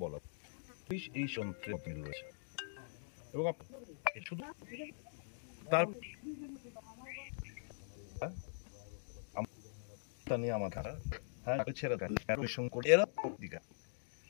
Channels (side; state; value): right; silent; digital silence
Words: বলা পুলিশ এই যন্ত্রে রয়েছে এবং শুধু তার নিয়ে আমার